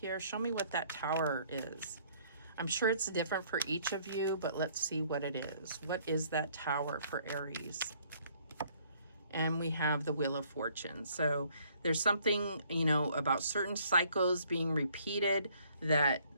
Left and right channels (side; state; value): both; inverted; correlation -0.62